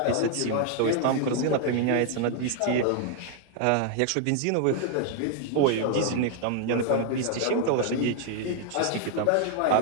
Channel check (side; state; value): both; different; correlation 0.00